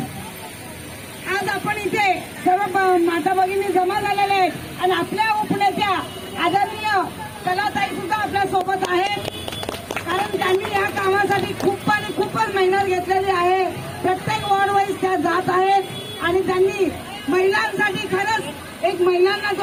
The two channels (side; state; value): both; identical; correlation 1.00